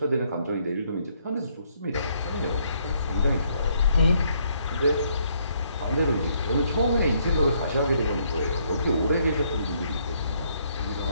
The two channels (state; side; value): inverted; both; correlation -0.70